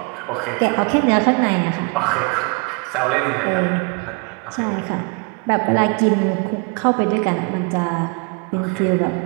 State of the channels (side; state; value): left; quieter; 32.4 dB